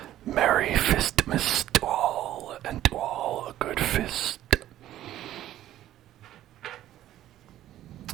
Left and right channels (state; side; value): quieter; left; 13.1 dB